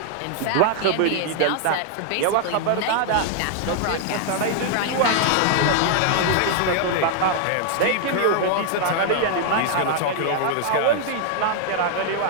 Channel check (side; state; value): both; different; correlation 0.00